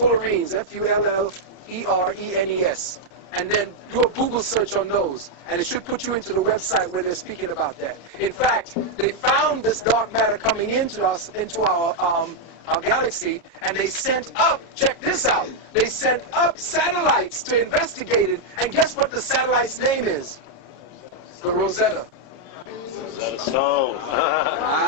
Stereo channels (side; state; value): right; late; 30 ms